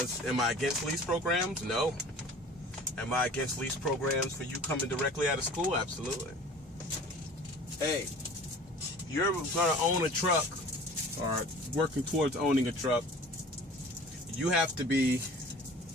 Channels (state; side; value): normal; both; correlation 0.44